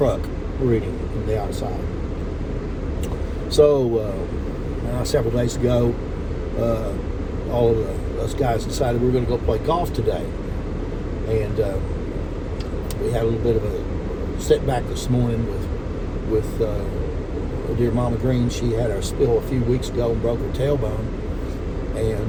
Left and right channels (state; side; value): identical; both; correlation 1.00